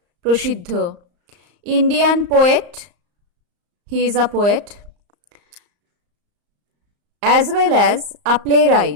prasiddho, Indian poet. He is a poet, as well as a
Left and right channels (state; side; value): late; left; 34 ms